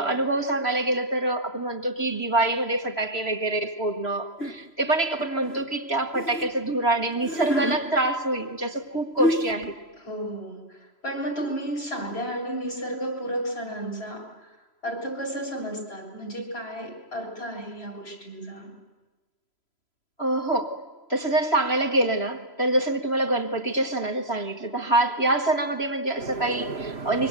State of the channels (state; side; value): late; right; 3.0 ms